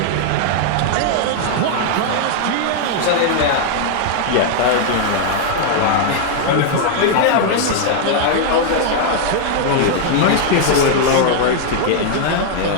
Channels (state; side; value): different; both; correlation 0.00